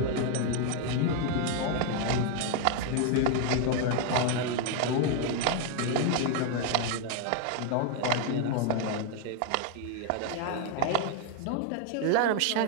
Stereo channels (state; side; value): different; both; correlation 0.00